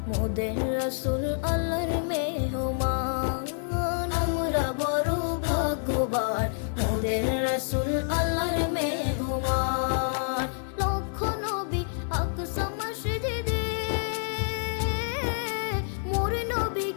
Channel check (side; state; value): right; silent; digital silence